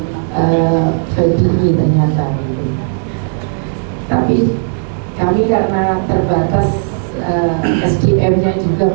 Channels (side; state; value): left; silent; digital silence